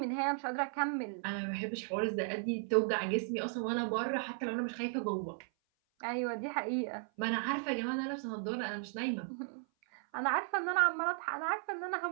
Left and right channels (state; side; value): silent; left; 54 dB below the other